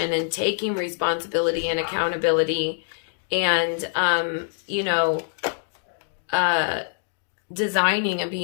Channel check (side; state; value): right; silent; digital silence